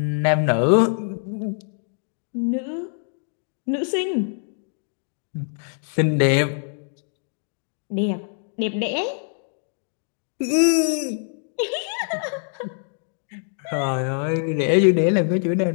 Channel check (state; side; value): silent; right; digital silence